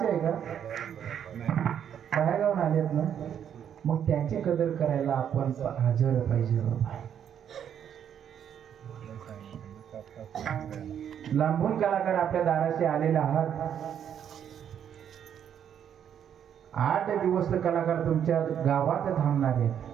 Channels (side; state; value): left; quieter; 9.0 dB